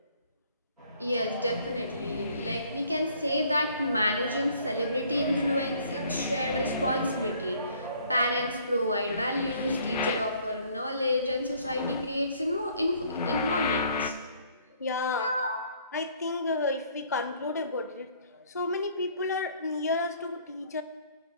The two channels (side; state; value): both; inverted; correlation -0.60